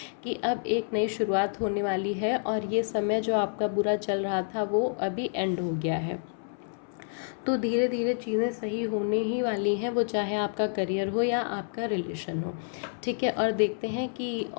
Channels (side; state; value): right; silent; 59 dB below the other